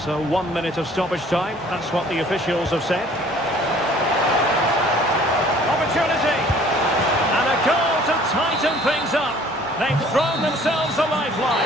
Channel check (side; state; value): both; normal; correlation 0.54